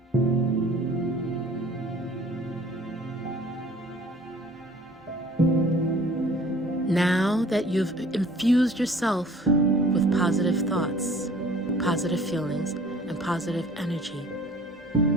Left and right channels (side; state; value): both; normal; correlation 0.50